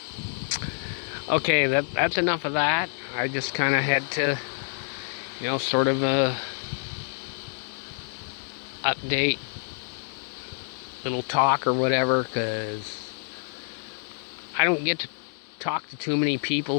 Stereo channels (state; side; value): silent; right; digital silence